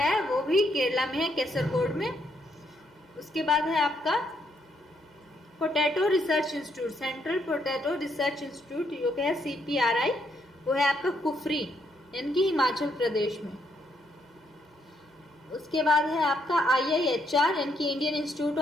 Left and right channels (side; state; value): both; normal; correlation 0.74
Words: वो भी केरला में है, केसरगोड में। उसके बाद है आपका potato research institute, central potato research institute जो कि है CPRI, वो है आपका कुफरी यानी कि हिमाचल प्रदेश में। उसके बाद है आपका IIHR यानी कि Indian institute